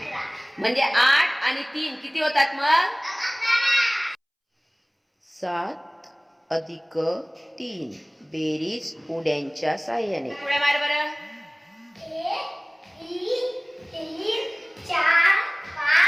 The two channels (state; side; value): identical; both; correlation 1.00